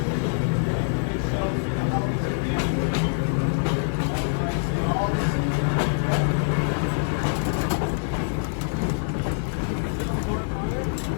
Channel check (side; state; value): right; silent; 60 dB below the other